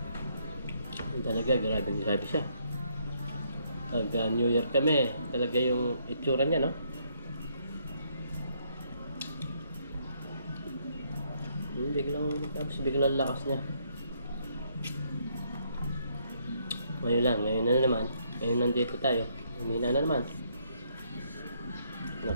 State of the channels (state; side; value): inverted; both; correlation -0.71